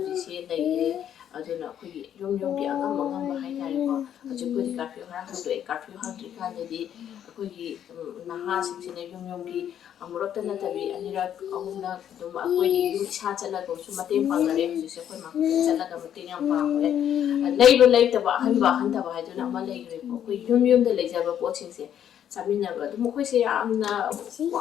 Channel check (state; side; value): quieter; right; 9.9 dB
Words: ꯂꯩꯔꯦ ꯑꯗꯨꯅ ꯑꯩꯈꯣꯏꯒꯤ ꯌꯨꯝꯒꯤ ꯑꯉꯝꯕ ꯍꯥꯏꯇꯥꯔꯦꯀꯣ ꯍꯧꯖꯤꯛꯄꯨꯗꯤ ꯀꯥꯔꯐ꯭ꯌꯨ ꯈꯔ ꯍꯥꯡꯗꯣꯛꯑꯦ ꯀꯥꯔꯐ꯭ꯌꯨ ꯍꯥꯡꯗ꯭ꯔꯤꯀꯥꯟꯗꯗꯤ ꯑꯩꯈꯣꯏꯒꯤ ꯅꯍꯥꯁꯤꯡꯁꯤꯅ ꯌꯨꯝꯒꯤ ꯑꯃꯨꯔꯛꯇ ꯅꯠꯇꯕꯤ ꯑꯅꯤꯔꯛ ꯑꯍꯨꯝꯂꯛ ꯑꯗꯨꯝ ꯑꯩꯈꯣꯏꯒꯤ ꯌꯨꯝ ꯏꯁꯥ ꯆꯠꯂꯒꯁꯨ ꯃꯇꯦꯡ ꯄꯥꯡꯅꯔꯦ ꯍꯧꯖꯤꯛꯁꯦ ꯑꯩꯈꯣꯏ ꯃꯥꯈꯛꯇ ꯆꯠꯂꯒ ꯃꯇꯦꯡ ꯌꯥꯝ ꯄꯥꯡꯉꯦ ꯂꯩꯕ ꯂꯩꯇꯕ ꯑꯍꯟꯕ ꯍꯥꯏꯗꯨꯅ ꯑꯃ ꯂꯩꯈ꯭ꯔꯦꯀꯣ ꯑꯩꯈꯣꯏ ꯌꯨꯝꯗ ꯂꯩꯖꯕ ꯄꯣꯠꯁꯤꯡꯁꯦ ꯆꯥꯃꯤꯟꯅꯕ ꯑꯗꯨꯝ ꯃꯈꯣꯏꯁꯦ ꯌꯥꯝꯅ